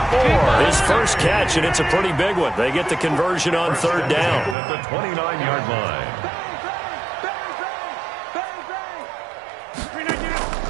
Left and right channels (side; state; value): left; drops out; at 4.5 s